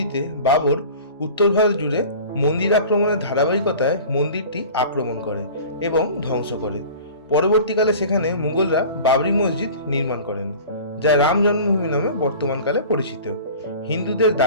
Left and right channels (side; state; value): both; inverted; correlation -0.40